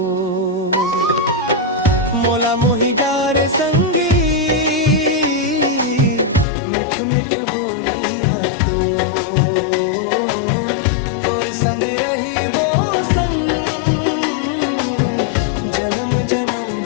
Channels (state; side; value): drops out; right; at 6.5 s